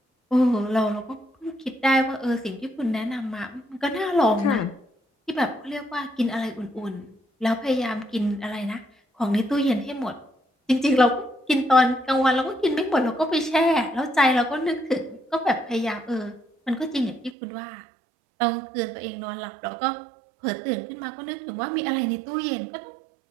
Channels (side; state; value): left; drops out; at 17.4 s